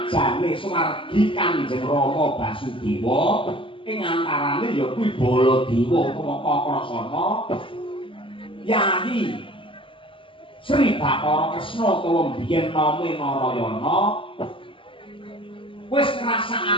Sumargi Kanjeng Rama Basudewa ing antarane ya kuwi Baladewa utawa Kakrasana Yayi Sri Bathara Kresna utawa biyen name Narayana wis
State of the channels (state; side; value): late; right; 0.25 ms